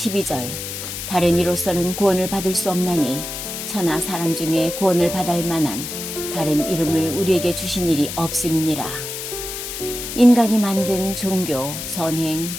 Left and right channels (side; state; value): left; noise; hiss, 7 dB below the sound